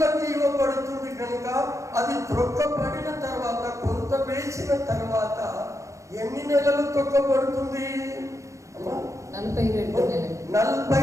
ఇవ్వబడుతుంది కనుక అది త్రొక్కబడిన తర్వాత, కొంత వేసిన తర్వాత ఎన్ని నెలలు తొక్కబడుతుంది?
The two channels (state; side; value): late; left; 0.15 ms